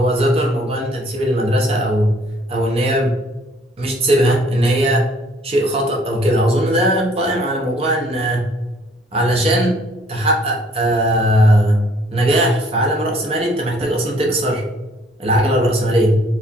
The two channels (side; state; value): both; normal; correlation 0.60